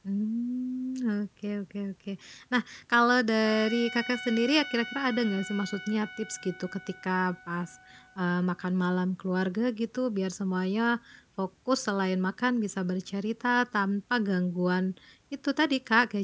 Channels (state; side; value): identical; both; correlation 1.00